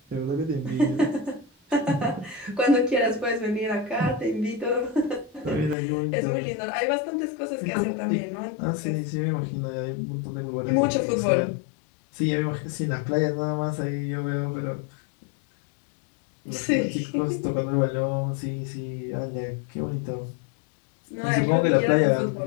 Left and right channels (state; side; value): drops out; right; at 5.8 s